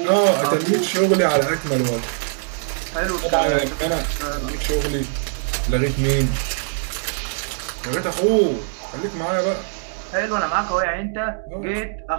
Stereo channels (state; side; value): silent; left; digital silence